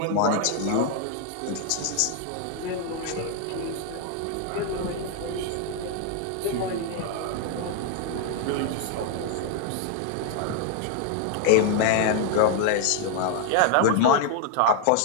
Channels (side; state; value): both; different; correlation 0.00